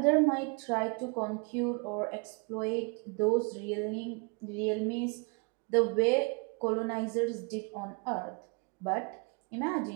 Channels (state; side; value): quieter; left; 32.9 dB